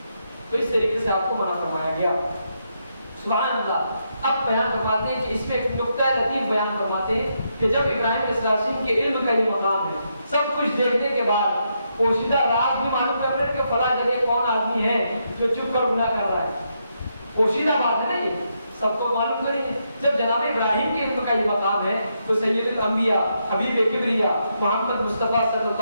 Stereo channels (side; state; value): both; inverted; correlation -0.80